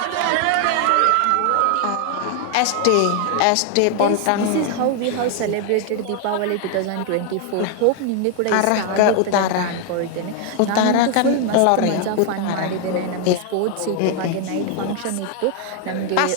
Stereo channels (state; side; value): different; both; correlation 0.00